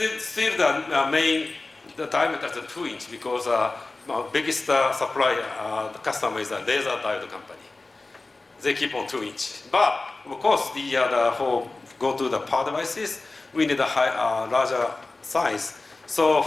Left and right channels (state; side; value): quieter; right; 3.3 dB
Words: Still the diameter is 2 inches because biggest supplier, the customer is a laser diode company. They keep on 2 inches. But of course, for go to the power devices, we need a larger size. So